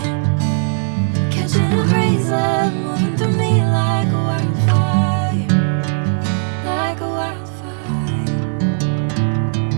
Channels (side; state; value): left; silent; 58 dB below the other